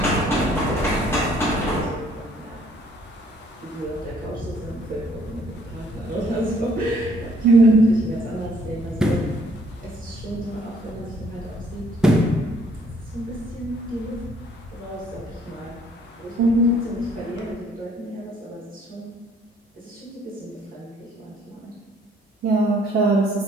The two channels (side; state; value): both; normal; correlation 0.62